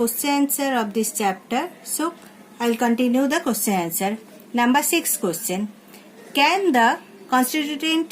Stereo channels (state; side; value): identical; both; correlation 1.00